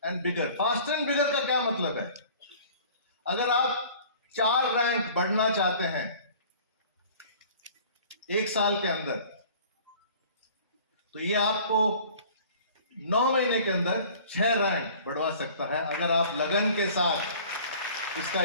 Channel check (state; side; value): inverted; both; correlation -0.48